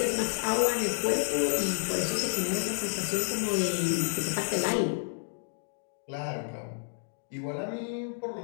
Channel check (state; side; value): silent; right; 58 dB below the other